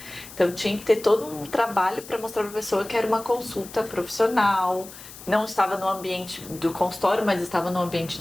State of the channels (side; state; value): left; noise; hiss, 16 dB below the sound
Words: Então tinha que ter todo um trabalho para mostrar para a pessoa que era uma consulta profissional. Não estava no ambiente do consultório, mas estava no ambiente